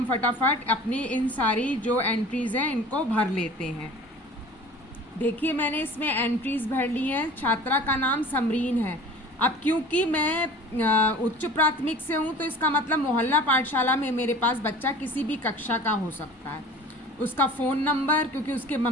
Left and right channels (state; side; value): normal; both; correlation 0.42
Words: फटाफट अपनी इन सारी जो एंट्रीज़ हैं इनको भर लेते हैं। देखिए, मैंने इसमें एंट्रीज भर ली हैं। छात्रा का नाम समरीन है। अब क्योंकि मैं उच्च प्राथमिक से हूँ तो इसका मतलब मोहल्ला पाठशाला में मेरे पास बच्चा किसी भी कक्षा का हो सकता है। उसका फ़ोन नंबर, क्योंकि उसके